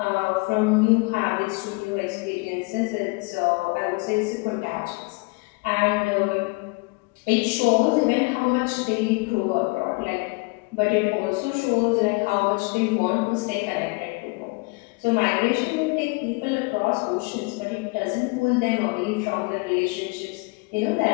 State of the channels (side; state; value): right; quieter; 28.2 dB